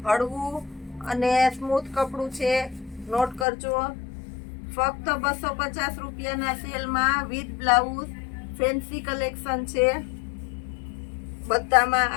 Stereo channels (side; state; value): right; drops out; at 3.5 s